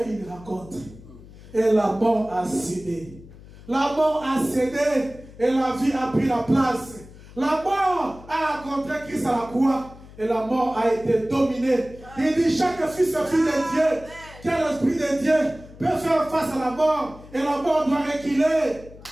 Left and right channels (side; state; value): left; noise; hum, 19 dB below the sound